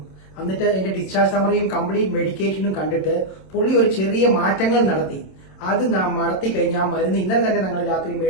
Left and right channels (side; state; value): right; late; 27 ms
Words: എന്നിട്ട് എന്റെ ഡിസ്ചാർജ് സമ്മറിയും കംപ്ലീറ്റ് മെഡിക്കേഷനും കണ്ടിട്ട് പുള്ളി ഒരു ചെറിയ മാറ്റങ്ങൾ നടത്തി. അത് നടത്തി കഴിഞ്ഞ ആ മരുന്ന് ഇന്നലെ തന്നെ ഞങ്ങൾ രാത്രി